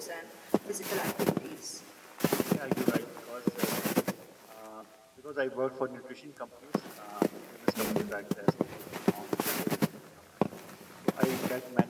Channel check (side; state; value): both; identical; correlation 1.00